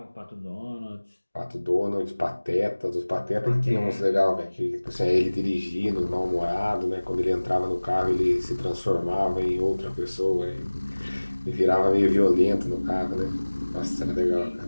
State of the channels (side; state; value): both; inverted; correlation -1.00